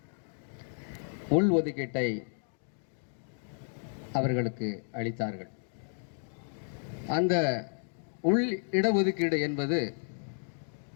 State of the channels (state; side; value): silent; right; digital silence